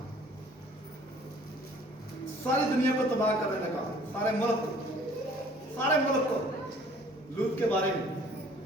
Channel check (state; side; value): normal; both; correlation 0.54